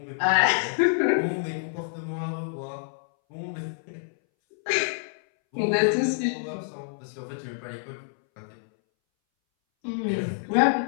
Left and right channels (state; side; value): silent; right; 60 dB below the other